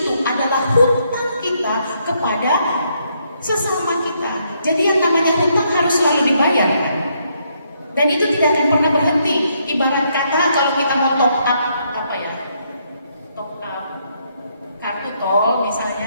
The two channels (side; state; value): both; inverted; correlation -0.74